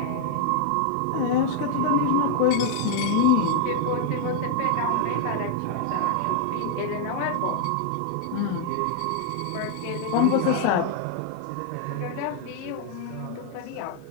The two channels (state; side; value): different; both; correlation 0.00